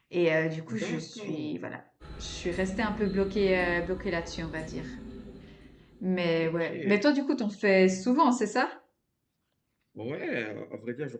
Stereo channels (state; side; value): identical; both; correlation 1.00